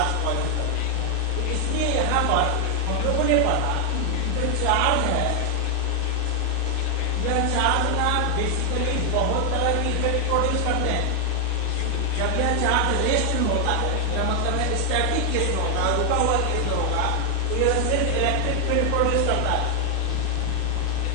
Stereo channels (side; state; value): both; different; correlation 0.00